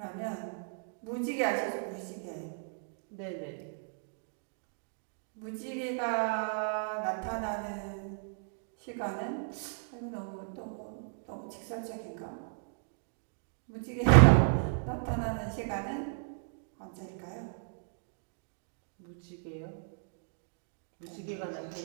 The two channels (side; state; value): left; silent; digital silence